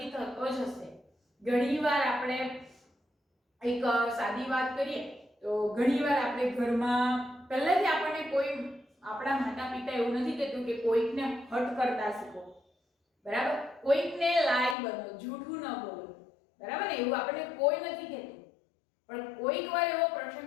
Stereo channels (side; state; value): right; drops out; at 14.8 s